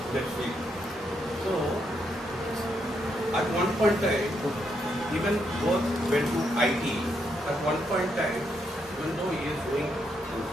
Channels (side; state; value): both; normal; correlation 0.78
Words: that field. So, at one point in time, even both went to IT. At one point in time, even though he is doing his